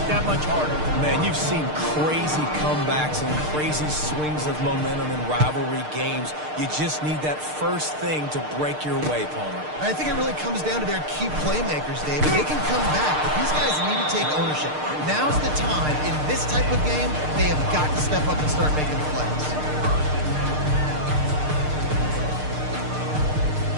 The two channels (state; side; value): late; left; 6.6 ms